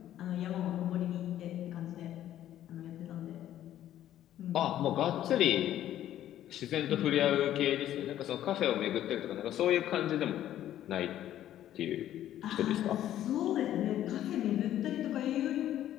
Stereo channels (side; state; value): right; quieter; 12.1 dB